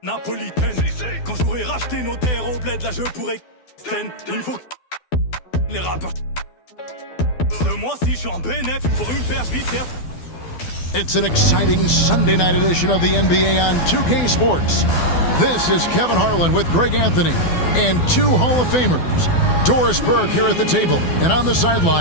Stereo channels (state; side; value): late; right; 12 ms